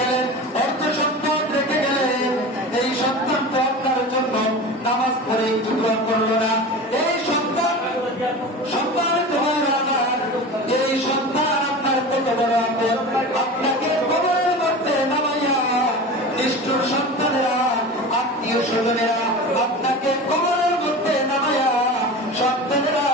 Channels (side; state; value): both; normal; correlation 0.32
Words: অর্থ সম্পদ রেখে গেলেন, এই সন্তান তো আপনার জন্য নামাজ পড়ে একটু দোয়া করলো না। এই সন্তান তোমার আমার, এই সন্তান আপনার কত বড় আপন, আপনাকে কবরের মধ্যে নামাইয়া নিষ্ঠুর সন্তানেরা, আত্মীয় স্বজনেরা আপনাকে কবরের মধ্যে নামাইয়া, সন্তানেরা